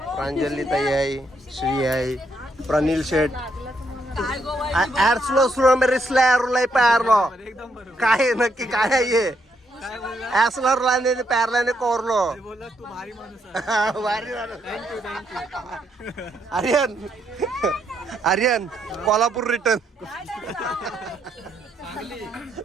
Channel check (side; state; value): both; normal; correlation 0.76